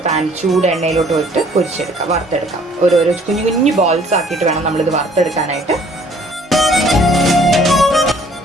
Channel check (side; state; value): both; normal; correlation 0.58